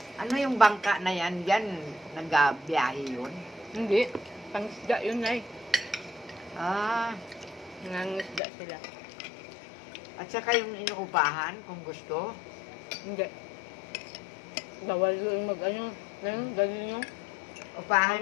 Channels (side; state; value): right; drops out; at 8.4 s